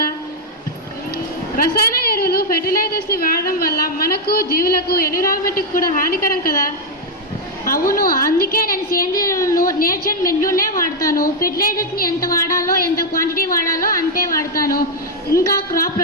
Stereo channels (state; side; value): normal; both; correlation 0.01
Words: రసాయన ఎరువులు ఫెర్టిలైజర్స్ని వాడడం వల్ల మనకు, జీవులకు, ఎన్విరాన్మెంట్కి కూడా హానికరం కదా. అవును, అందుకే నేను సేంద్రియ ఎరువులను నేచర్ మెన్యూనే వాడతాను. ఫెర్టిలైజర్స్ని ఎంత వాడాలో, ఎంత క్వాంటిటీ వాడాలో అంతే వాడతాను. ఇంకా crop